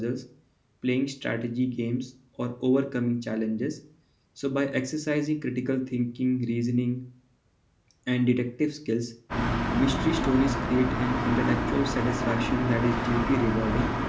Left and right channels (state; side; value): identical; both; correlation 1.00